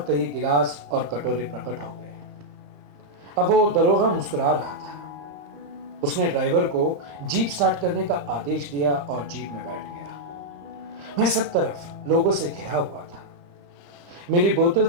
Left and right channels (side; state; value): left; late; 35 ms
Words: कई गिलास और कटोरे प्रकट हो गए। अब वो दरोगा मुस्कुरा रहा था। उसने ड्राइवर को जीप स्टार्ट करने का आदेश दिया और जीप में बैठ गया। मैं सब तरफ लोगों से घिरा हुआ था। मेरी बोतल